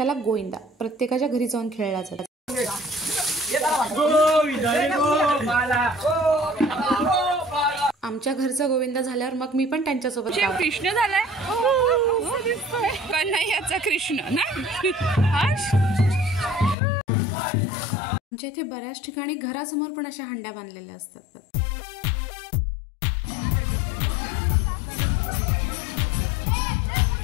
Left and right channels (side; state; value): right; drops out; at 16.8 s